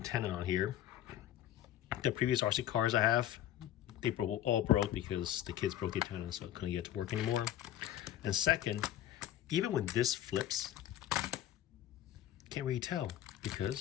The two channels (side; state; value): right; quieter; 12.0 dB